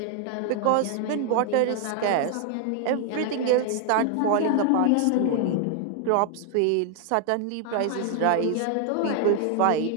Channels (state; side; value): different; both; correlation 0.00